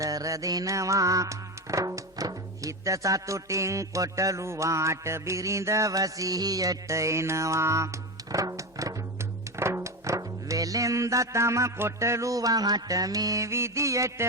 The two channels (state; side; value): normal; both; correlation 0.18